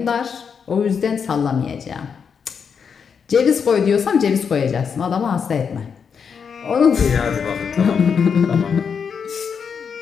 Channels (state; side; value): quieter; right; 6.5 dB